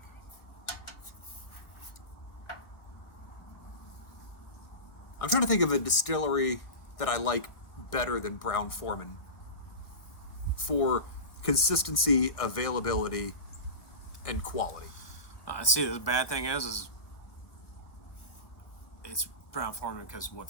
I'm trying to think of a distillery that I like better than Brown-Forman for consistency, availability, and quality. See, the bad thing is it's Brown-Forman because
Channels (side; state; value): right; late; 1.6 ms